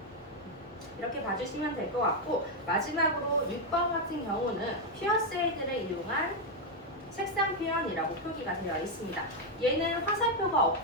이렇게 봐주시면 될 것 같고, 마지막으로 6번 같은 경우는 퓨어세이드를 이용한 색상 표현이라고 표기가 되어 있습니다. 얘는 화살표가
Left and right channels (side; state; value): both; normal; correlation 0.02